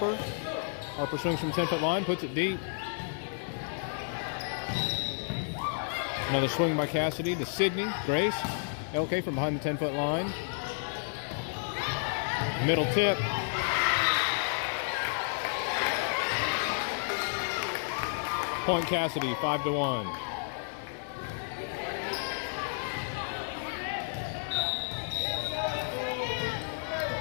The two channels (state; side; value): silent; right; digital silence